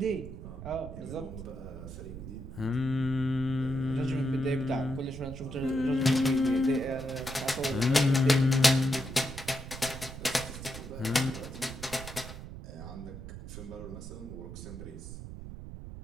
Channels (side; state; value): right; noise; rumble, 11 dB below the sound